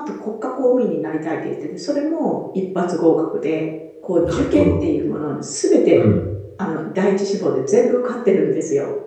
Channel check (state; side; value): identical; both; correlation 1.00